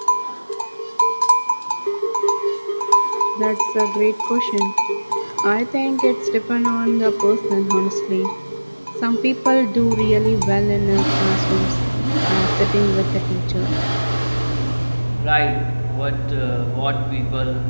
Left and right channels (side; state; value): both; inverted; correlation -1.00